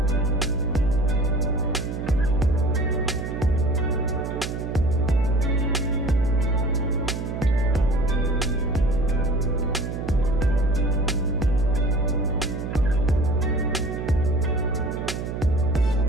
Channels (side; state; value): right; noise; hum, 5 dB below the sound